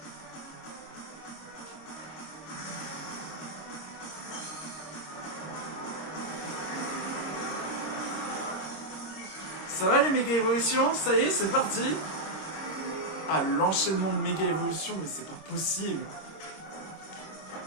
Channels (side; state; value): right; late; 26 ms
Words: Ça va les méga évolutions? Ça y est, c'est parti. Ah, l'enchaînement de méga évolutions, mais c'est pas possible.